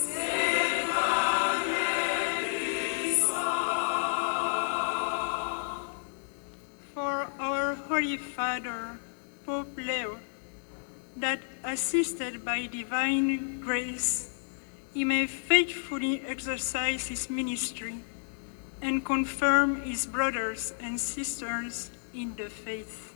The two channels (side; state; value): right; silent; digital silence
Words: Holy Father, Pope Leo, that assisted by divine grace, he may faithfully exercise his ministry and confirm his brothers and sisters in the faith.